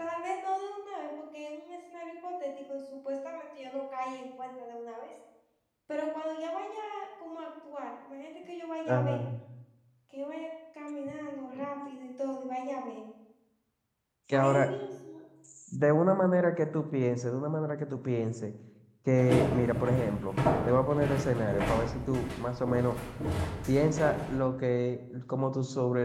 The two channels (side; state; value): both; identical; correlation 1.00